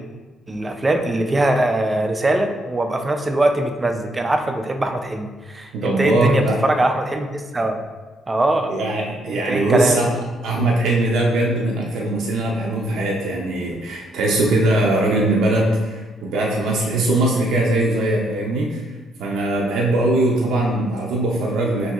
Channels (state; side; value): normal; both; correlation 0.72